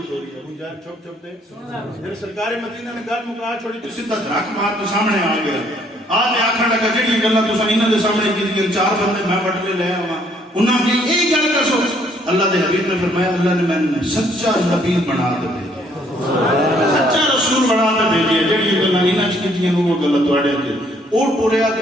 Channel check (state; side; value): normal; both; correlation 0.65